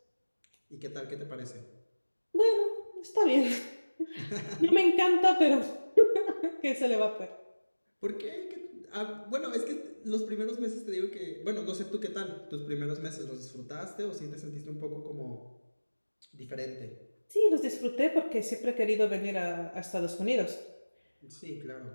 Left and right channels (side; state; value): both; inverted; correlation -1.00